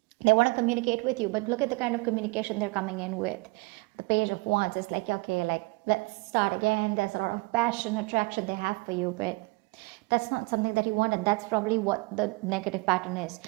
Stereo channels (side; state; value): left; quieter; 26.4 dB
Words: They want to communicate with you, but look at the kind of communication they're coming in with. The Page of Wands is like, okay, like, let's start again. There's a lot of passion, attraction they have for you, but that's not something that you want, and that's probably what the negative pattern is.